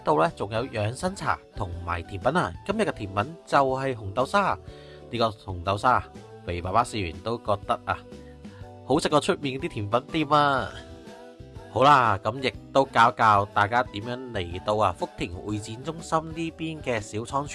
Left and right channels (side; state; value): both; identical; correlation 1.00